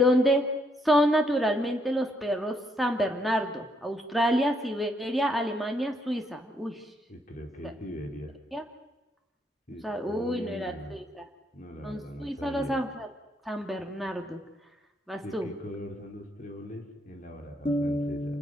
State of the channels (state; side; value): normal; both; correlation 0.73